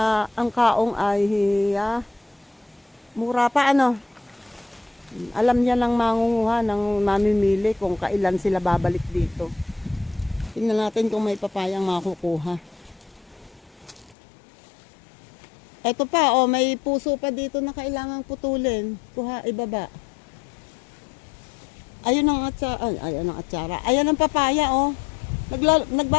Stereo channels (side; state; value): right; drops out; at 14.2 s